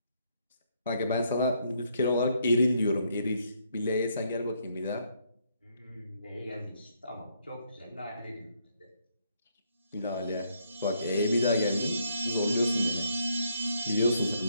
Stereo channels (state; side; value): inverted; both; correlation -0.73